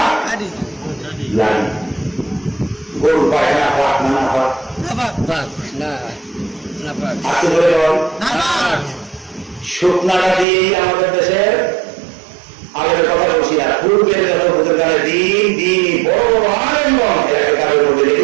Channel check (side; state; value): left; drops out; at 10.5 s